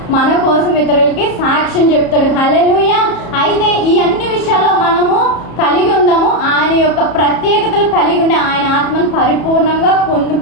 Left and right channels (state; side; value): late; right; 34 ms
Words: మన కోసం ఇతరులకి సాక్ష్యం చెప్తాడు. హల్లెలూయా! అయితే ఈ అన్ని విషయాల్లో మనము కలిగి ఉందాము. ఆయన యొక్క ప్రత్యేకతలు కలిగి ఉండే ఆయన ఆత్మను పరిపూర్ణంగా